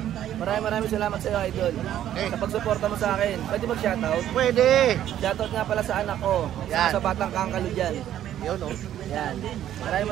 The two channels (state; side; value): quieter; left; 11.5 dB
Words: Maraming salamat sa iyo, idol. Okay. Sa pagsuporta mo sa akin. Pwede mag-shoutout? Pwede. Shoutout nga pala sa anak ko. Yan. Sa batang kangkalo dyan. Yun oh. Yan.